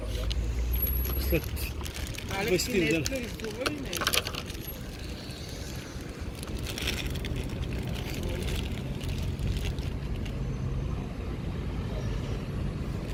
След Алекс, 20 ти дена. днеска рисува ли нещо?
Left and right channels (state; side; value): identical; both; correlation 1.00